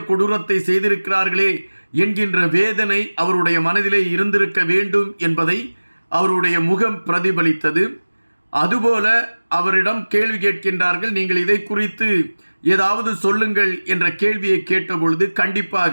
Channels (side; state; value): both; inverted; correlation -1.00